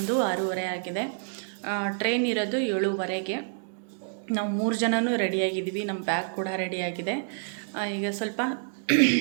6:30 ಆಗಿದೆ. ಟ್ರೈನ್ ಇರೋದು 7:15ಗೆ. ನಾವು 3 ಜನನೂ ರೆಡಿಯಾಗಿದ್ದೀವಿ. ನಮ್ಮ ಬ್ಯಾಗ್ ಕೂಡ ರೆಡಿಯಾಗಿದೆ. ಈಗ ಸ್ವಲ್ಪ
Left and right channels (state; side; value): silent; left; digital silence